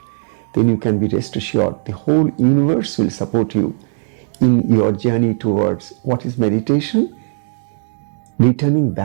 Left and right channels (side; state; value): left; silent; digital silence